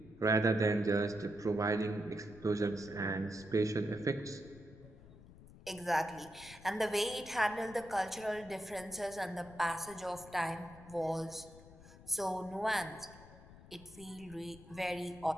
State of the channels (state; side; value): noise; left; rumble, 19 dB below the sound